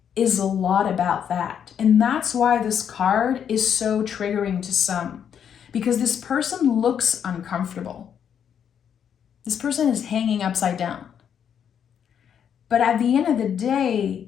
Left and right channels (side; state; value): right; quieter; 8.4 dB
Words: is a lot about that. And that's why this card is so triggering to some, because this person looks uncomfortable. This person is hanging upside down. But at the end of the